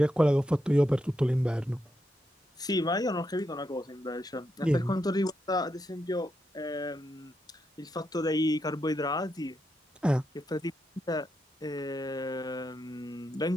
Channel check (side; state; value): both; normal; correlation 0.83